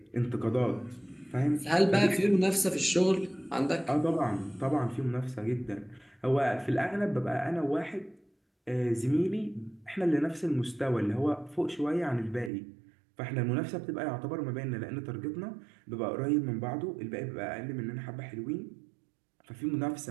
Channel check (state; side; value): drops out; left; at 12.5 s